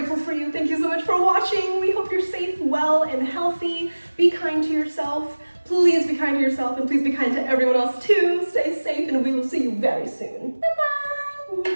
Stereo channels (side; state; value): both; inverted; correlation -1.00